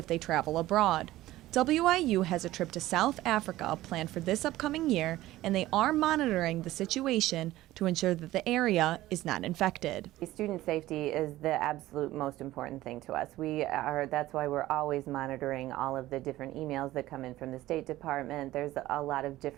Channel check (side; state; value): left; quieter; 16.1 dB